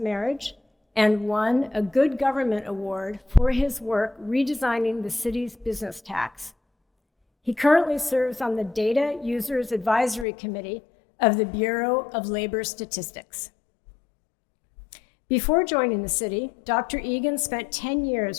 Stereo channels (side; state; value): right; drops out; at 10.2 s